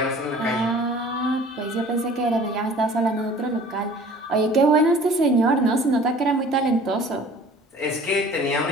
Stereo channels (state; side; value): normal; both; correlation 0.48